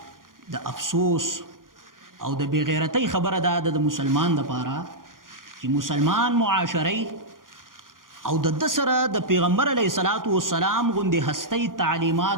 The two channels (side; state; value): left; late; 0.90 ms